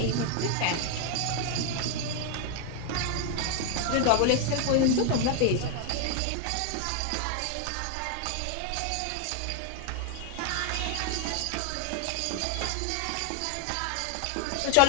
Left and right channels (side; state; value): both; different; correlation 0.00